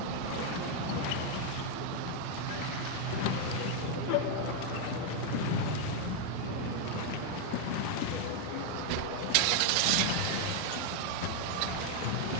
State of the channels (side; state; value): both; different; correlation 0.01